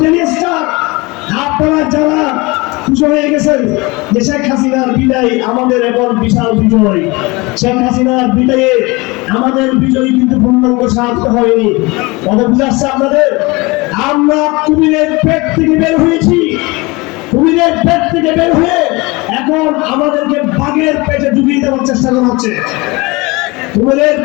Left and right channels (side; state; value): right; quieter; 24.5 dB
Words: ডেইলি স্টার। আপনারা যারা খুশি হয়ে গেছেন যে শেখ হাসিনার বিদায় আমাদের এখন বিশাল বিজয়, শেখ হাসিনার বিদায়ে আমাদের বিজয় কিন্তু পূর্ণাঙ্গ সার্থক হয়নি। কথা বুঝাচ্ছে আপনাদের? আমরা কুমিরের পেট থেকে বের হয়েছি, কুমিরের পেট থেকে বের হয়ে এখন আমাদেরকে বাঘের পেটে ঢুকিয়ে দেওয়ার চেষ্টা করা হচ্ছে। কুমিরের